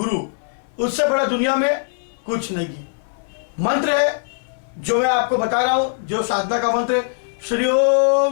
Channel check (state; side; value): silent; right; 58 dB below the other